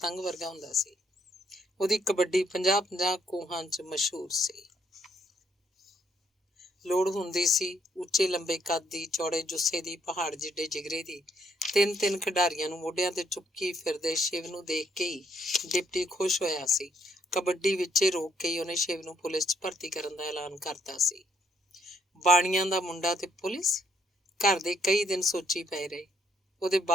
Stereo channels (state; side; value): normal; both; correlation 0.70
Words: ਵਰਗਾ ਹੁੰਦਾ ਸੀ। ਉਹਦੀ ਕਬੱਡੀ 50-50 ਕੋਹਾਂ 'ਚ ਮਸ਼ਹੂਰ ਸੀ। ਲੋੜ ਹੁੰਦੀ ਸੀ ਉੱਚੇ ਲੰਬੇ ਕੱਦ ਦੀ, ਚੌੜੇ ਜੁੱਸੇ ਦੀ, ਪਹਾੜ ਜਿੱਡੇ ਜਿਗਰੇ ਦੀ। ਤਿੰਨ ਖਿਡਾਰੀਆਂ ਨੂੰ ਮੋਢਿਆਂ ਤੇ ਚੁੱਕੀ ਫਿਰਦੇ ਸ਼ਿਵ ਨੂੰ ਦੇਖ ਕੇ ਹੀ ਡਿਪਟੀ ਖੁਸ਼ ਹੋਇਆ ਸੀ। ਕਬੱਡੀ ਵਿੱਚੇ ਰੋਕ ਕੇ ਹੀ ਉਹਨੇ ਸ਼ਿਵ ਨੂੰ ਪੁਲਿਸ 'ਚ ਭਰਤੀ ਕਰਨ ਦਾ ਐਲਾਨ ਕਰਤਾ ਸੀ। ਬਾਣੀਆਂ ਦਾ ਮੁੰਡਾ ਤੇ ਪੁਲਿਸ, ਘਰ ਦੇ ਕਈ ਦਿਨ ਸੋਚੀ ਪਏ ਰਹੇ। ਉਹਦੇ